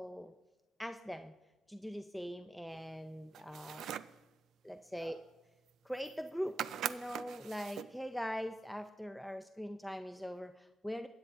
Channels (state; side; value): normal; both; correlation 0.88